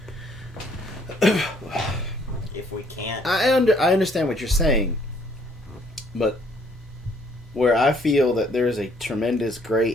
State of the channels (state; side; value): normal; both; correlation 0.64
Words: If we can't... I understand what you're saying, but where I feel that there is a tremendous gray